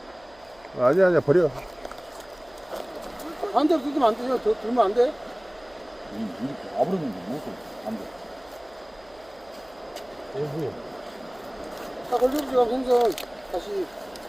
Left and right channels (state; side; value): noise; right; hum, 27 dB below the sound